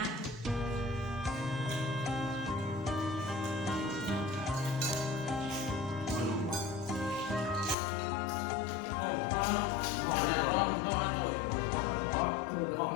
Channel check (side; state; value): right; drops out; at 7.8 s